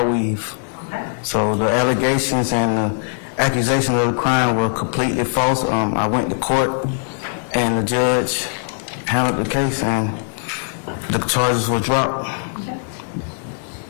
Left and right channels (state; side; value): silent; right; 65 dB below the other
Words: weave. Okay. So the allegations and the accusations of the crime were completely false. I went to court, and the judge handled the case, and the charges were dropped. Okay.